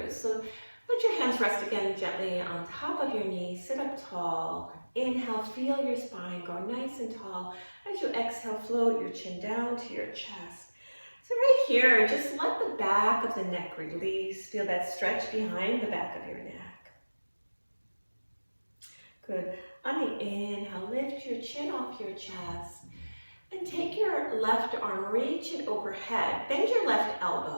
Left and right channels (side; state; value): both; inverted; correlation -1.00